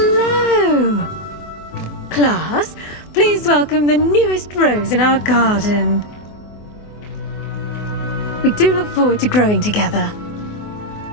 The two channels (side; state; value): right; late; 24 ms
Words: Class, please welcome the newest rose in our garden. We do look forward to growing together.